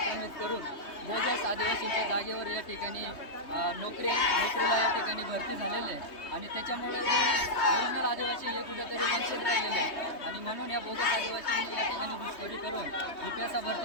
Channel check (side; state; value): right; late; 3.2 ms